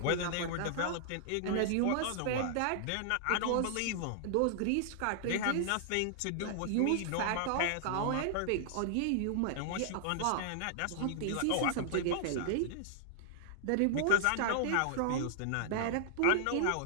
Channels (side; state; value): both; different; correlation -0.01